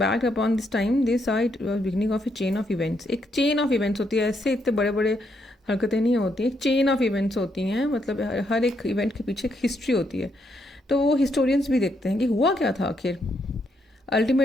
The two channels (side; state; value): both; normal; correlation 0.77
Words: upon this time, they saw it was beginning of a chain of events. एक चेन ऑफ इवेंट्स होती है, ऐसे इतने बड़े बड़े हरकतें नहीं होती, एक चेन ऑफ इवेंट्स होती हैं, मतलब हर एक इवेंट के पीछे एक हिस्ट्री होती है. तो वो हिस्टोरियंस भी देखते हैं कि हुआ क्या था आखिर.